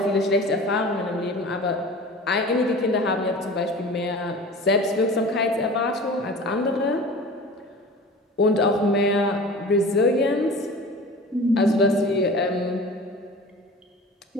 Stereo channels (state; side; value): normal; both; correlation 0.39